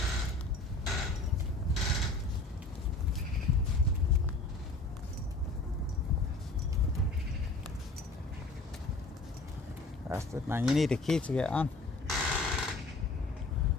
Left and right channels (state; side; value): quieter; right; 3.0 dB